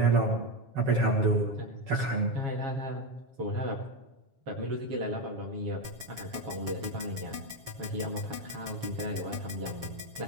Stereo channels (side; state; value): left; late; 7.4 ms